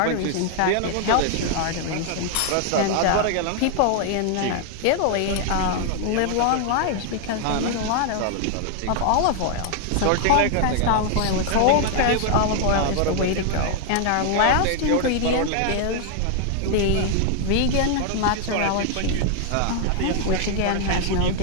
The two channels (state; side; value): different; both; correlation 0.00